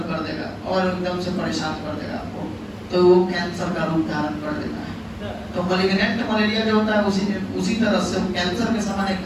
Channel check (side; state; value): both; identical; correlation 1.00